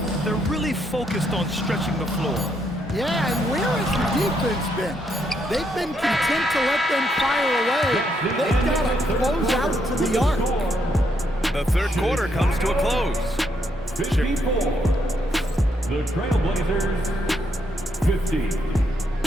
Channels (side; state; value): both; normal; correlation 0.76